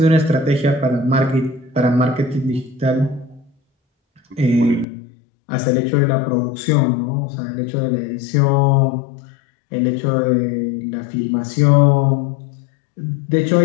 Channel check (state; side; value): drops out; right; at 4.9 s